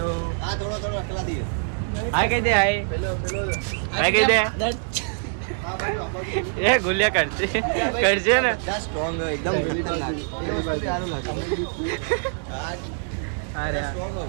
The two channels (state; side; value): silent; left; digital silence